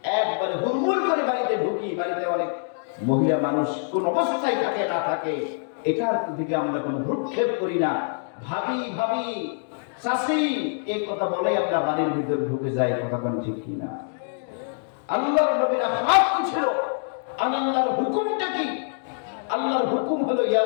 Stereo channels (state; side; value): silent; right; digital silence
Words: একবারে হুড়মুড় করে বাড়িতে ঢুকি। বাড়িতে অনেক মহিলা মানুষ কোন অবস্থায় থাকে না থাকে, এটার দিকে আমরা কোনো ভ্রুক্ষেপ করি না। ভাবি ভাবি চাচি এই কথা বলে আমরা বাড়ির ভিতরে ঢুকে যাই, কথা কোন ঠিক কিনা? আল্লাহর নবীর আখলাক কি ছিল? আল্লাহর হুকুমটা কি? আল্লাহর হুকুম হলো ইয়া